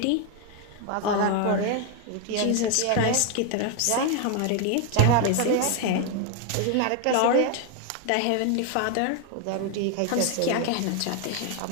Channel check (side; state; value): both; different; correlation 0.01